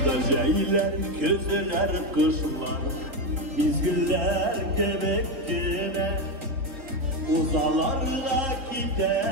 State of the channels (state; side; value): late; left; 3.2 ms